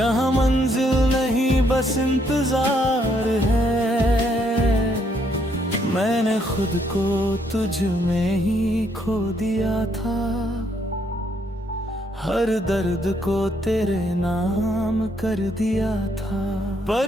मंजिल नहीं बस इंतजार है। मैंने खुद को तुझ में ही खो दिया था, हर दर्द को तेरे नाम कर दिया था।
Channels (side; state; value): both; normal; correlation 0.71